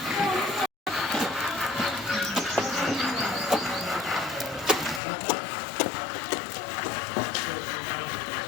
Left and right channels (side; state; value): right; drops out; at 5.0 s